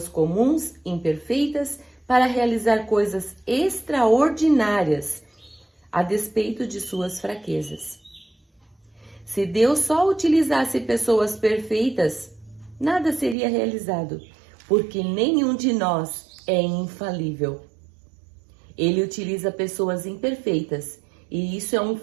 comuns, imperfeitas, para realizar coisas extraordinárias, a despeito de suas fraquezas. Se Deus só utilizasse pessoas perfeitas, nada seria realizado, porque nenhum de nós é infalível. Ele utiliza pessoas imperfeitas, e isso é um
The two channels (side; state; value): left; drops out; at 13.4 s